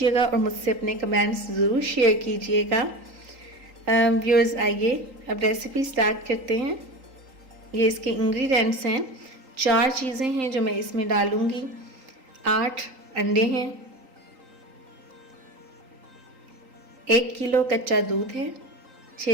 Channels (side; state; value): left; late; 3.8 ms